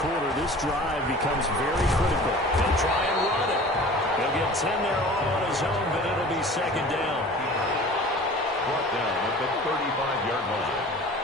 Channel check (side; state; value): both; normal; correlation 0.42